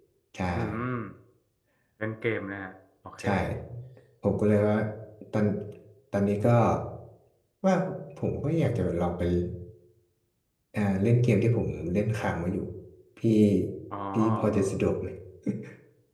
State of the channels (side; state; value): both; identical; correlation 1.00